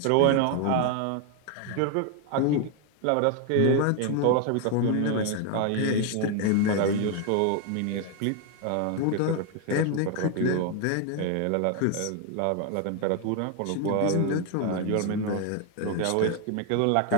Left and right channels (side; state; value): both; different; correlation 0.01